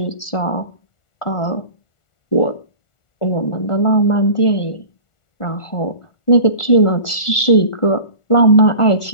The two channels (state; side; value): late; right; 1.4 ms